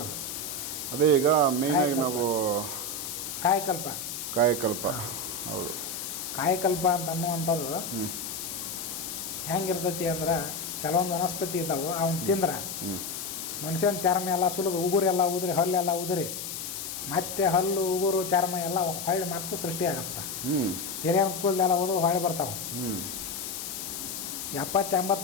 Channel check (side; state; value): left; noise; hiss, 6 dB below the sound